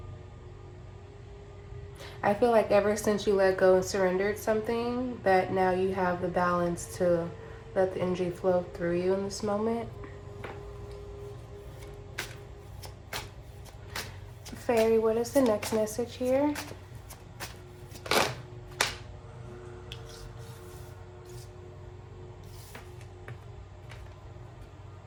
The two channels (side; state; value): both; identical; correlation 1.00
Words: I feel like ever since you let go and surrendered something, that now you have the balance to let the energy flow through you in this moment. Fairy, what is the next message here?